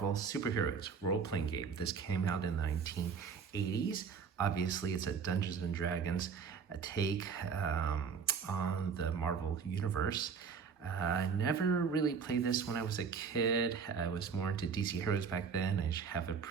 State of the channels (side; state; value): left; quieter; 6.1 dB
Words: Superheroes role-playing game. This came out in the 1980s. Obviously, it's a Dungeons & Dragons take on the Marvel Universe. I never really played this when I was a kid. I was more into DC Heroes back then. I have a